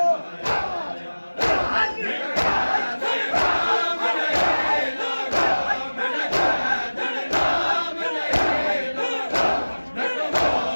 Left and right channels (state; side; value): inverted; both; correlation -1.00